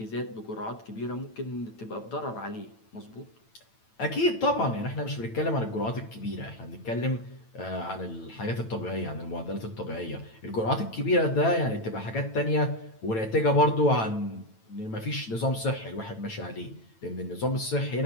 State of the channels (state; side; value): late; right; 9.0 ms